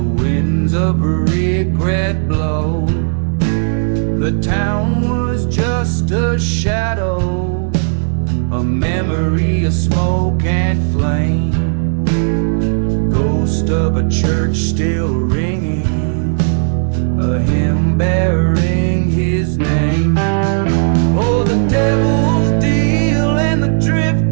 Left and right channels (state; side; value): silent; left; digital silence